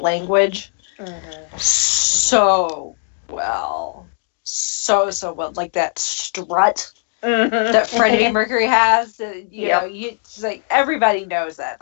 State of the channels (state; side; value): silent; right; digital silence